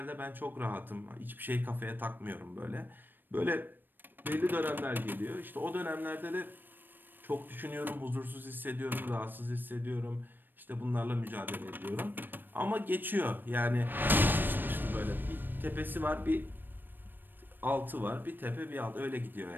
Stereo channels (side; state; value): left; late; 0.093 ms